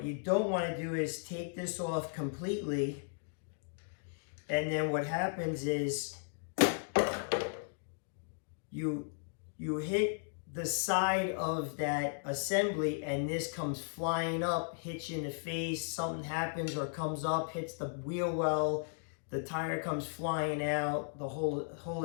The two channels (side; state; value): right; silent; digital silence